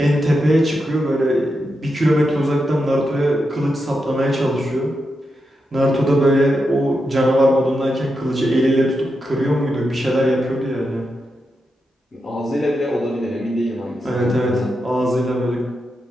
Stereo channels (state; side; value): normal; both; correlation 0.87